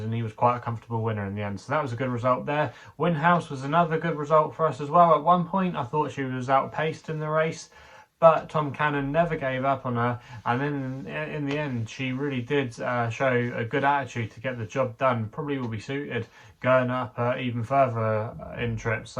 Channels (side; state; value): both; identical; correlation 1.00